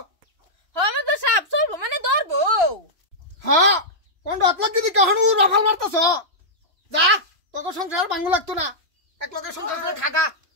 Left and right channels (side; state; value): left; late; 3.0 ms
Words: হ্যাঁ মাদব সাহেব চলবো মানে ধরবো হ্যাঁ কোনটা লোক কি কখনো রফাল মারতাছ যা তোকে সংসার ভাঙু লাগতো না এক লোকের সংসার খাগা